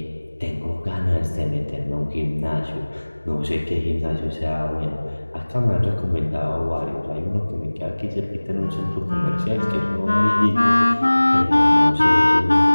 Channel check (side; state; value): both; inverted; correlation -1.00